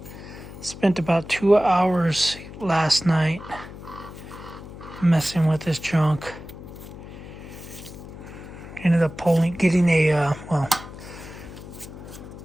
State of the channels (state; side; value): noise; left; hum, 14 dB below the sound